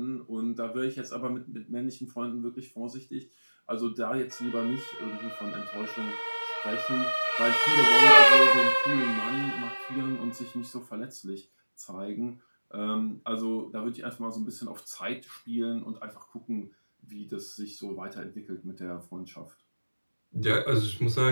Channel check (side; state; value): both; inverted; correlation -1.00